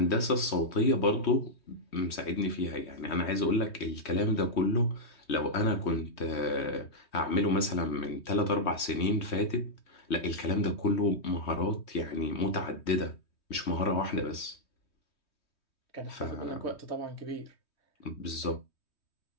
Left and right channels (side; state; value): right; late; 3.2 ms